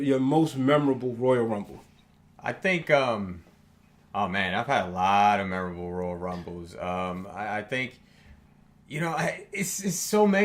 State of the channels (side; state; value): both; identical; correlation 1.00